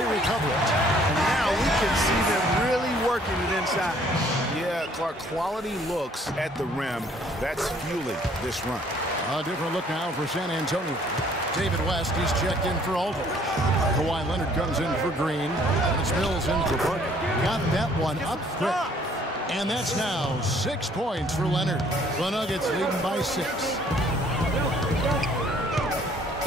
recover it. And now we can see them really working it inside. Yeah, Clark, quality looks at the rim. That's fueling this run. A different look now for San Antonio. David West, he's checked in for Aldridge. Kawhi Leonard comes in for Green. And it's Mills in for Parker. Got that one up quick. And that's now 6 points for Leonard. The Nuggets leading by 6.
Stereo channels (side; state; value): both; normal; correlation 0.60